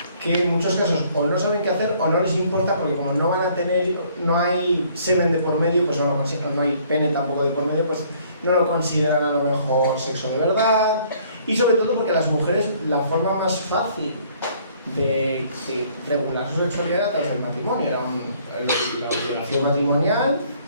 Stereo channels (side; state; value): both; inverted; correlation -0.61